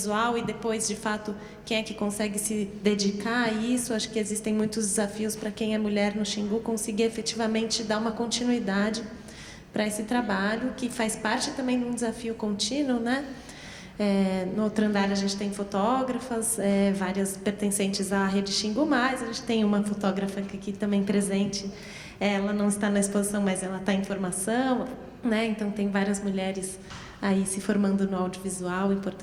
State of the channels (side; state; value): both; identical; correlation 1.00